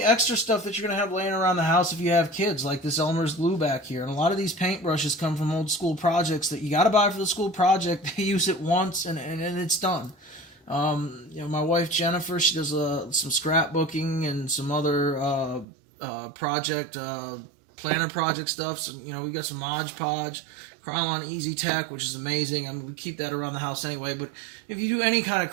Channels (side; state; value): left; drops out; at 15.7 s